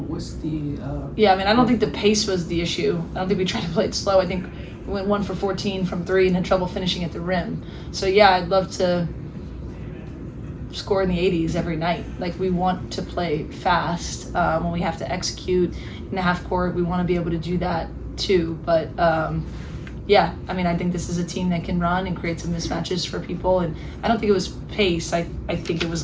What's the? Yeah, I don't think the pace was the issue. I don't think we tried to play it slow. I think we went 1 for 14 from 3 and had trouble finishing at the rim. So yeah, I'd love to score in the 80s every night. Like, we want to play fast. When we have to execute in the half court, we want to be able to do that too. But I think this is a team that can run and create some mismatches for people, and I don't think it was pace. I think it was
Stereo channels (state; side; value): identical; both; correlation 1.00